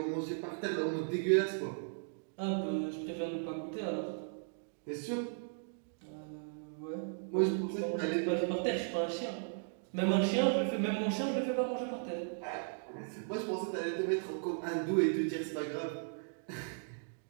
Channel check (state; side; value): silent; left; digital silence